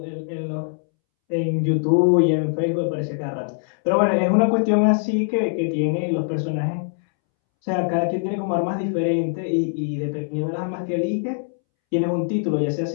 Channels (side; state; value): right; silent; 64 dB below the other